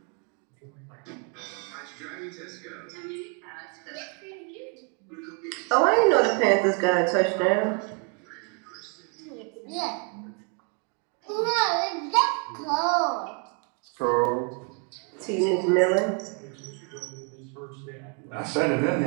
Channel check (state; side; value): quieter; left; 35.6 dB